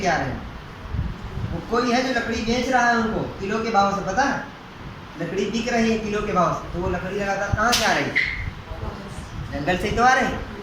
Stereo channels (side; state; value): both; identical; correlation 1.00